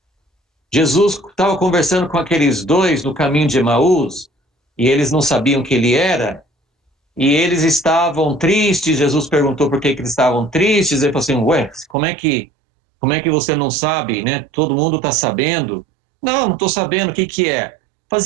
Jesus estava conversando com aqueles 2 no caminho de Emaús, e eles não sabiam quem ele era, e eles estavam tristes. Jesus perguntou por que eles estavam tristes. Ele falou assim: ué, como é que você não sabe, né? Todo mundo está sabendo. Não estou sabendo o que é. Mas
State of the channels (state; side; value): drops out; left; at 12.0 s